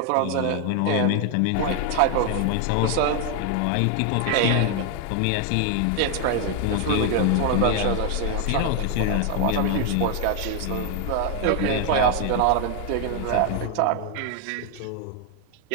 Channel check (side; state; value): both; different; correlation 0.00